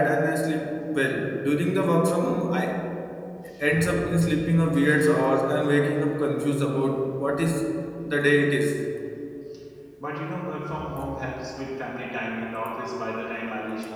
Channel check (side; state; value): both; identical; correlation 1.00